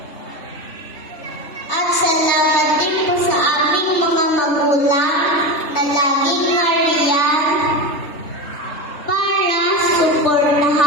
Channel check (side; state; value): right; late; 3.5 ms